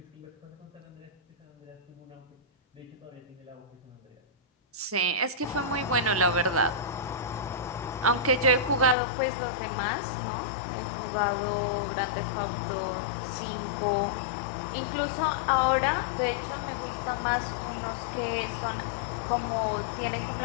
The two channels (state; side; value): drops out; right; at 9.0 s